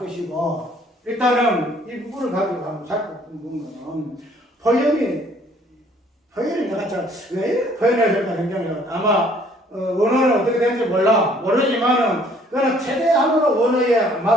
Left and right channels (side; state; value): both; normal; correlation 0.60